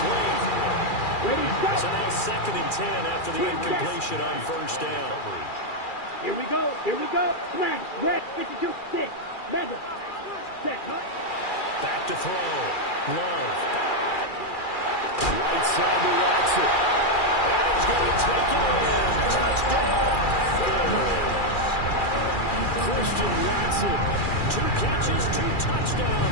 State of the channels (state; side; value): late; right; 2.4 ms